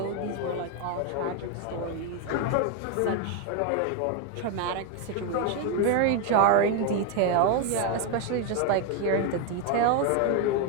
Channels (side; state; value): both; different; correlation 0.01